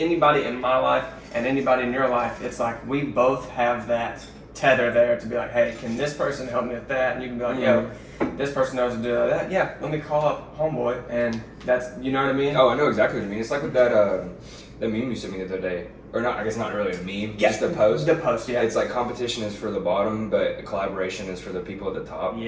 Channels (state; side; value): identical; both; correlation 1.00